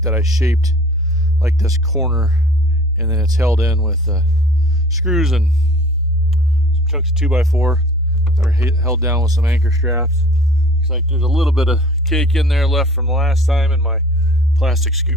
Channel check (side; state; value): both; normal; correlation 0.48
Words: that I shaped like this corner, and then it's held in with screws and some chunks of 2x4 that are held down with some anchor straps. Looks like there's a little bit of cake in there left from the last time, and my plastic